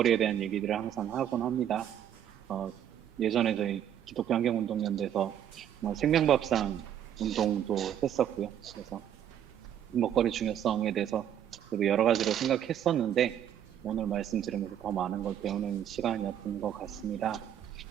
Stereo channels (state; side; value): quieter; left; 10.1 dB